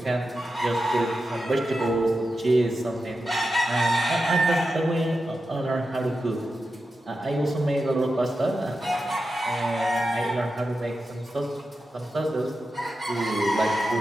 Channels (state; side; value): normal; both; correlation 0.90